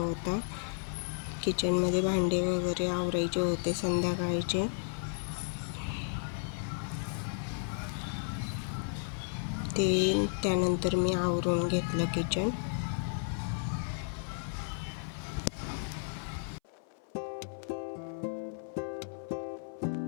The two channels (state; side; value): silent; right; 55 dB below the other